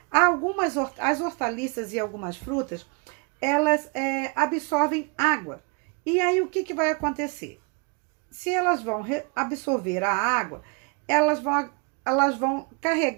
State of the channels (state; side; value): quieter; left; 32.9 dB